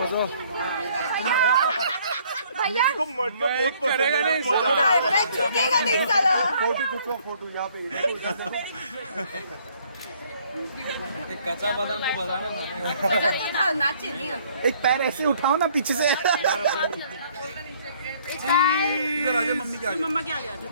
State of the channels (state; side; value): inverted; both; correlation -0.61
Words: भैया को मटका बहुत करेगा नहीं, मैं झुकेगा नहीं साला। फोटो खींचो, फोटो यहाँ पे। कच्चा बादाम को बजाना था, नाचे नहीं। एक पैर ऐसे उठाओ ना पीछे से। इधर आजा, मम्मी क्या मम्मा क्या गया?